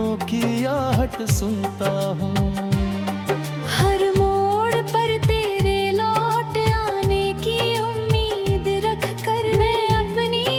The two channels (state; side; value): identical; both; correlation 1.00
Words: की आहट सुनता हूँ। हर मोड़ पर तेरे लौट आने की उम्मीद रख कर मैं अपनी